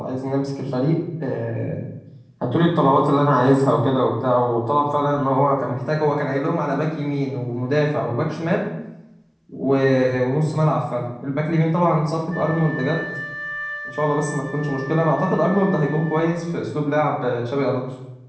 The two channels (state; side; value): identical; both; correlation 1.00